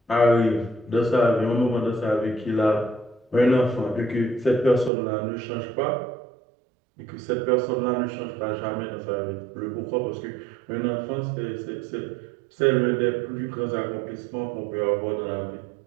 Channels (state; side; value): drops out; left; at 4.9 s